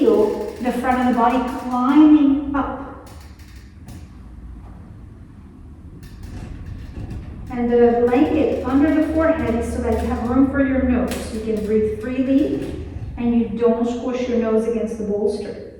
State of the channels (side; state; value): both; identical; correlation 1.00